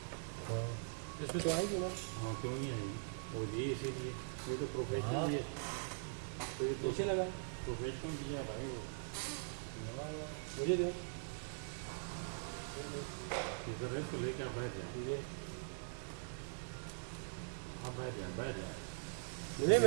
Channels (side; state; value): left; silent; digital silence